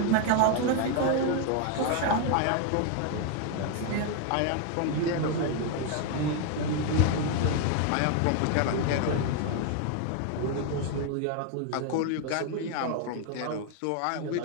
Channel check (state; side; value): different; both; correlation 0.01